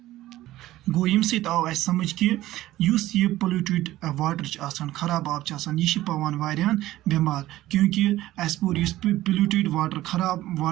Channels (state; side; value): quieter; left; 15.6 dB